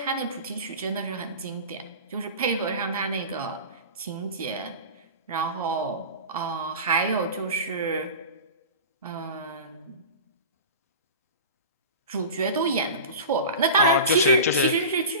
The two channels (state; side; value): inverted; both; correlation -0.32